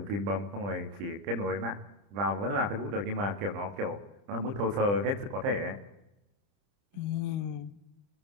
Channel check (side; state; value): left; late; 30 ms